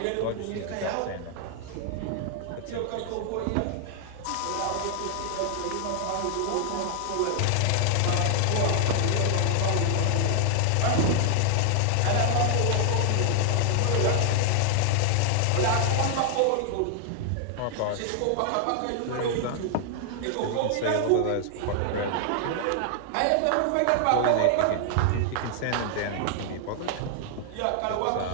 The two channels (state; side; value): different; both; correlation 0.00